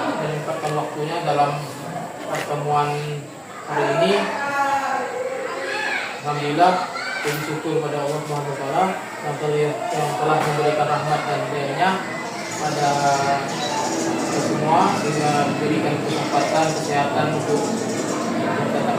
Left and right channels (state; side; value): identical; both; correlation 1.00